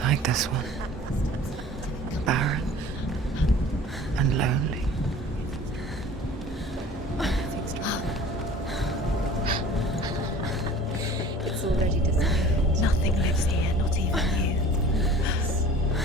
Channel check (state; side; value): normal; both; correlation 0.45